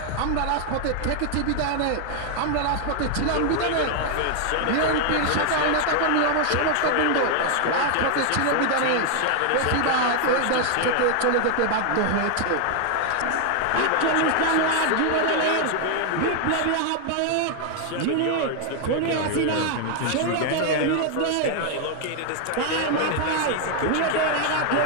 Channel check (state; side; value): different; both; correlation 0.00